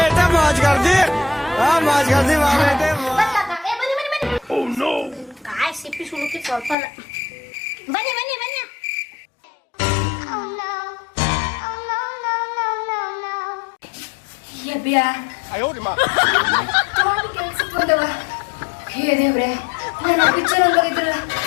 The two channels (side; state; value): right; drops out; at 6.8 s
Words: ಕಾಯಿ ಸಿಪ್ಪಿ ಸುಳುಕಿ ಸ್ವಲ್ಪ ಅಲ್ಲ. ಬನ್ನಿ ಬನ್ನಿ ಬನ್ನಿ. ಕೆಲ್ಸಕ್ಕೆ ಬಂದವ. ಹೇ ದೇವ್ರೆ, ನಾನು ಪಿಕ್ಚರ್ ಹಂಗಿದ್ರಲ್ಲ,